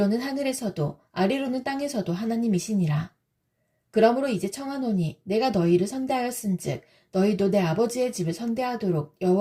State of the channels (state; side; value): identical; both; correlation 1.00